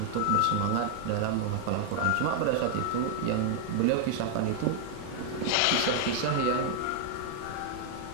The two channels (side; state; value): both; different; correlation 0.00